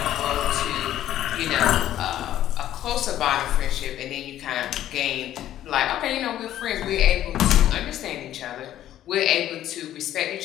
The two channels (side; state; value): right; quieter; 12.3 dB